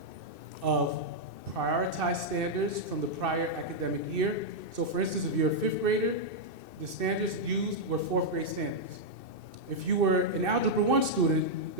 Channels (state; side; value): late; left; 2.6 ms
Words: of prioritized standards from the prior academic year. So for instance, if you're a fifth grader, the standards used were fourth grade standards. If you were an Algebra 1 student,